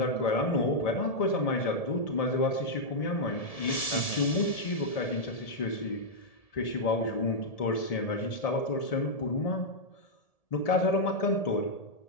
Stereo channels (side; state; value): right; late; 1.7 ms